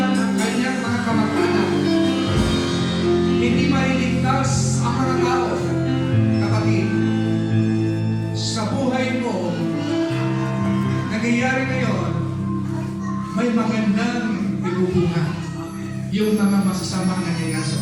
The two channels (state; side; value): identical; both; correlation 1.00